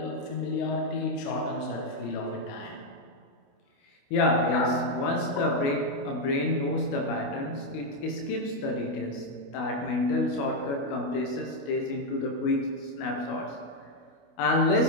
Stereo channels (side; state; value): right; late; 29 ms